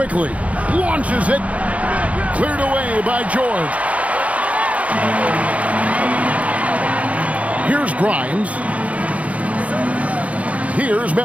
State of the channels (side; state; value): left; late; 0.066 ms